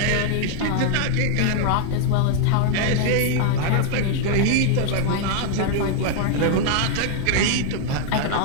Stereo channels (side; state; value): both; different; correlation 0.00